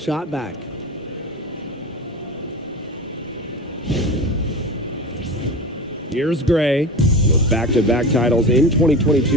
back. Here's Gray. With back-to-back titles in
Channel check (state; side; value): normal; both; correlation 0.30